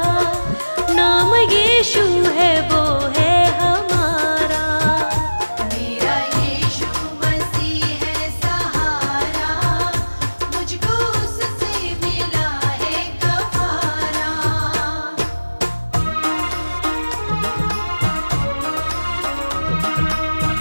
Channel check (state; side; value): inverted; both; correlation -1.00